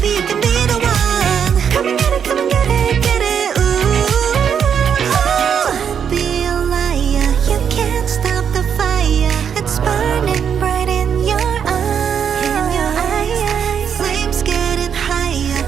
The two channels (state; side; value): quieter; left; 7.7 dB